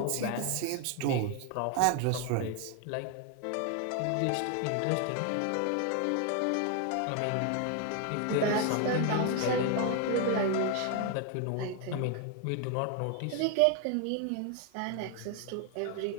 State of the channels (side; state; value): both; different; correlation 0.01